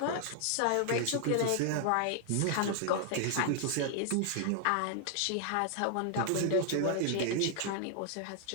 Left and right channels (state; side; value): different; both; correlation 0.00